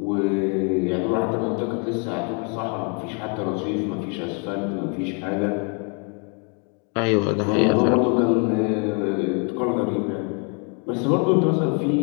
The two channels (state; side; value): quieter; right; 37.9 dB